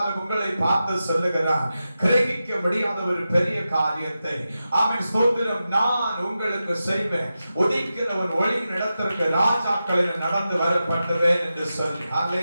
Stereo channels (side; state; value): both; inverted; correlation -0.91